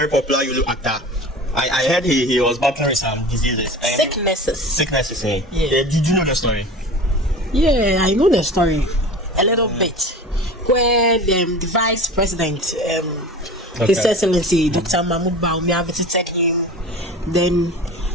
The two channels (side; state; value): both; normal; correlation 0.36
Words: popular Yolo actor. I heard he was battling with some diseases. Sicknesses, eh? Yeah. Did you know the story? Yeah, I know the story a little bit. Where the vice president, His Excellency Dr. Mahmoud Baumia visited him. Then